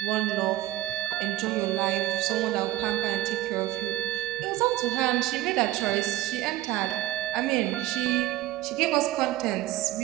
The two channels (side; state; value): left; quieter; 15.6 dB